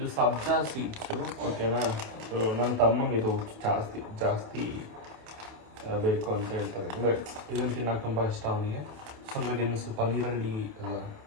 ಸಬ್ಜಾ ಸೀಡ್ಸು. ಓಕೆನಾ? ಸೊ ನನ್ನ ತಮ್ಮಂಗೆ ಇದು ಜಾಸ್ತಿ ಬೇಕು ಅಂತ ಹೇಳ್ತಾರೆ. ಅಂದರೆ ಇದನ್ನು ತಿನ್ನೋಕೆ ತುಂಬ ಇಷ್ಟ ಅವನಿಗೆ. ಸ್ವಲ್ಪ ನೀರಲ್ಲಿ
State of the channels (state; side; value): late; left; 28 ms